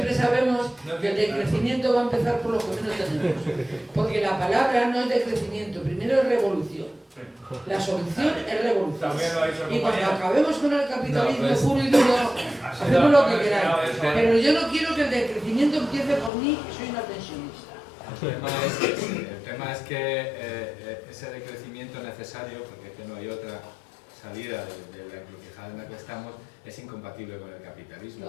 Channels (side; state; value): right; drops out; at 16.3 s